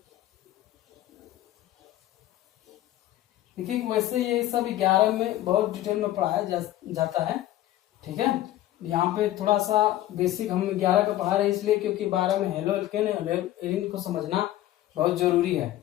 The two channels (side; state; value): right; quieter; 14.2 dB